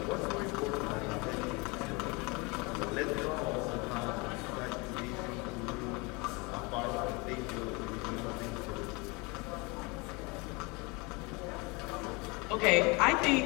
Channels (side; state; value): right; quieter; 27.6 dB